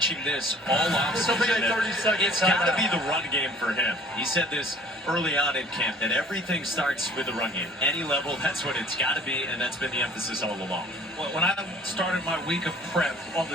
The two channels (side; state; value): both; normal; correlation 0.52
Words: this all offseason. It's got to be the run game for him. He said this early on in camp, that everything starts with the run game. Any level, that's what it's got to be, and that's been the emphasis all along. Well, when I started my week of prep on the